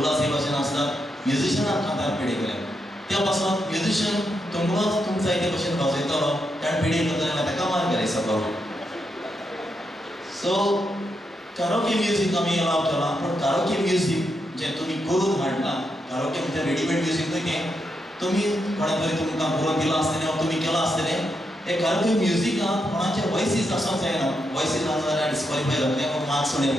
हे भाशेन आसतात म्युजिशियनान कांतार पेडे केलें. त्या पासून म्युजिशियन तुमकांच तुमकां जाय ते भशेन वाजयतलो ताणें पेडे करता जाल्यार ताका मार्क घाली सकलो. सो कारोके म्युजीक आमी अलाव केलां. पूण कारोके म्युजीक जें तुमी करून हाडला कारोके म्हणजे रेडीमेड म्युजीक न्हय तें तुमी कोणें तरी तुमकां करून दिलां आसतलें वा तुमी केलां आसतलें. हे कारोके म्युजिकांत कोणाचे वॉयसीस आसूंक जायना. वॉयसीस आसा जाल्यार डिस्क्वॉलिफाय जातले वा मार्क्स उणे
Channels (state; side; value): normal; both; correlation 0.82